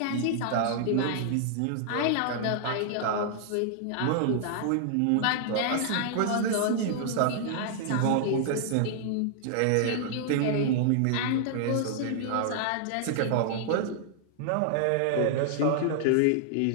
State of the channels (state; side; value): different; both; correlation -0.01